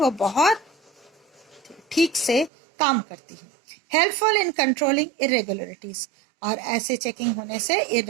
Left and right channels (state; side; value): drops out; left; at 2.5 s